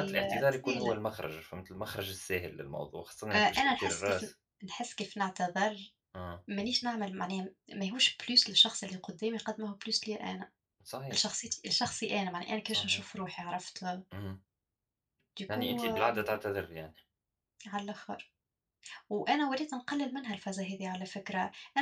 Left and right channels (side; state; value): both; identical; correlation 1.00